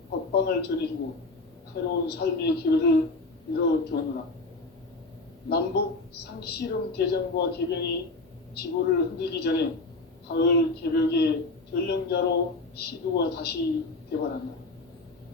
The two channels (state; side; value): quieter; right; 3.3 dB